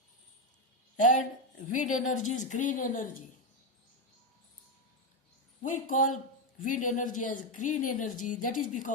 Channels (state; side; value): normal; both; correlation 0.08